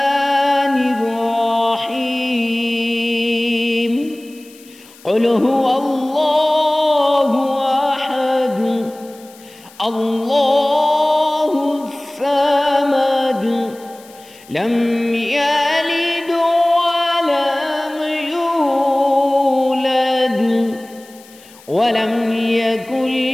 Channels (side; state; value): left; noise; hiss, 24 dB below the sound